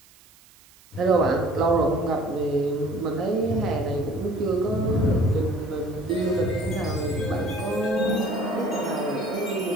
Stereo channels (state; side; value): noise; right; hiss, 27 dB below the sound